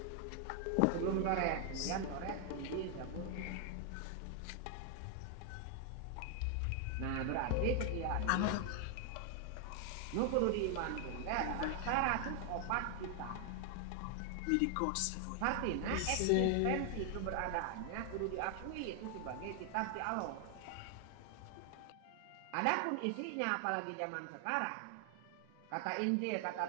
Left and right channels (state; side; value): different; both; correlation 0.00